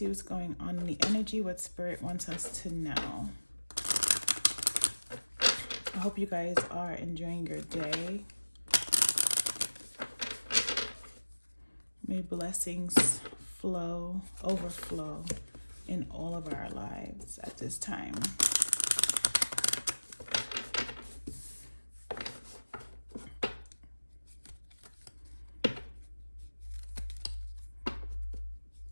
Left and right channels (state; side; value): inverted; both; correlation -1.00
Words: what's going on in the energy, what spirit wants us to know. I hope you guys are enjoying your day. May blessings overflow in all of our lives at this time.